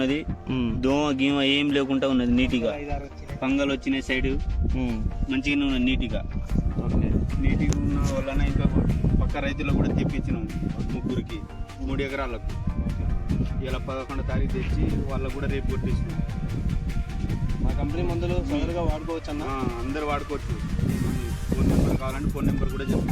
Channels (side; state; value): both; identical; correlation 1.00